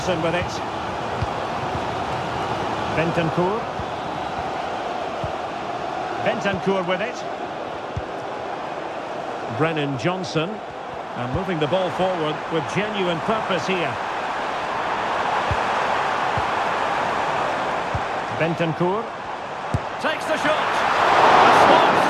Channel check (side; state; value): both; identical; correlation 1.00